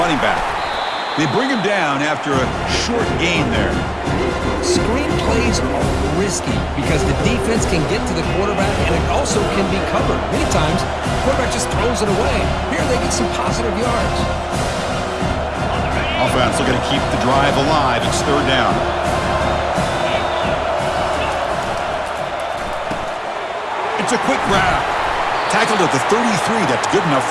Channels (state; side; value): identical; both; correlation 1.00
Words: running back. They bring him down after a short gain there. Screen plays are risky because the defense can get to the quarterback, and it also can be covered. Many times, the quarterback just throws it away. Here they get some positive yards. Offense looking to keep the drive alive. It's third down. It's a quick grab. Tackled at the 33. That's good enough